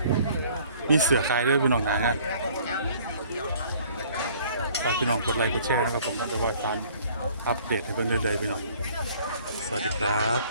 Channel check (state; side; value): inverted; both; correlation -0.55